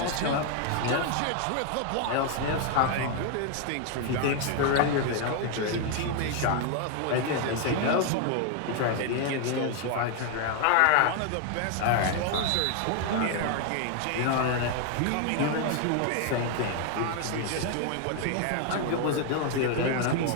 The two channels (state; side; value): different; both; correlation 0.00